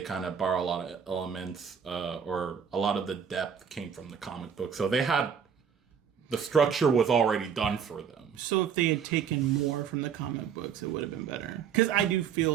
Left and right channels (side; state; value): left; quieter; 7.4 dB